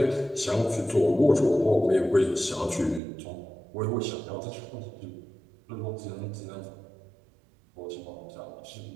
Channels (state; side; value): drops out; left; at 3.0 s